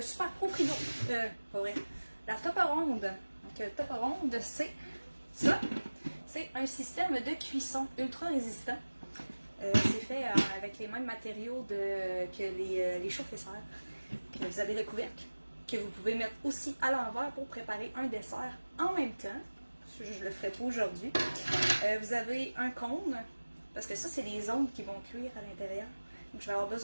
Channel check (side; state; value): both; inverted; correlation -1.00